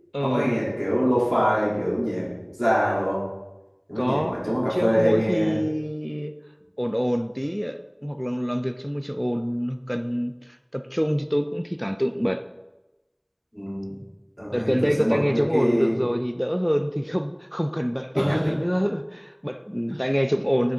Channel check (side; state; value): both; identical; correlation 1.00